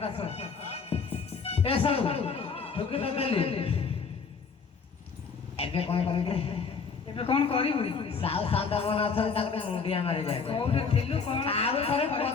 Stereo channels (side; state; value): right; quieter; 5.3 dB